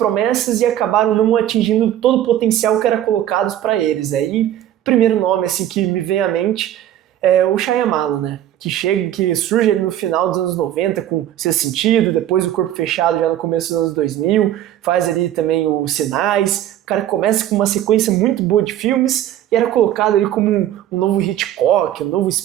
e acabaram não atingindo todo o potencial que era colocado para eles. Aí, o primeiro nome assim que me vem à mente é o Shyamalan, né? Que surge ali no final dos anos 90 com Sexto Sentido, depois o Corpo Fechado já no começo dos anos 2000, faz ali também os Sinais. O cara começa com uma sequência muito boa de filmes e era colocado ali como um novo Hitchcock, um novo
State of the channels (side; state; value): left; quieter; 11.9 dB